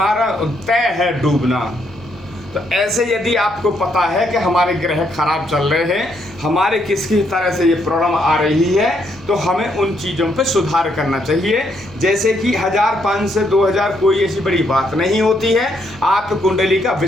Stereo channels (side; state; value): right; noise; rumble, 25 dB below the sound